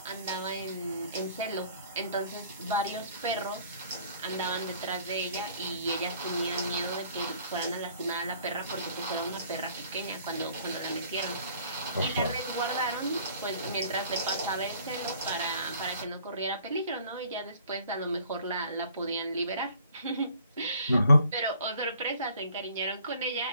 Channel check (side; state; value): both; inverted; correlation -0.55